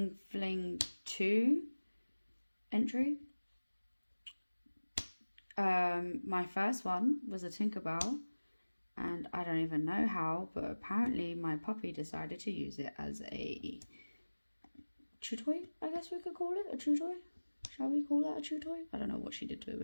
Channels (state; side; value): inverted; both; correlation -1.00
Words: Fling 2 entry. My first one was a Tinkerbell, and I don't even know how, but apparently my puppy decided to use it as a chew toy, I guess we could call it, a chew toy. Shall we call that a chew toy? I don't know what she did to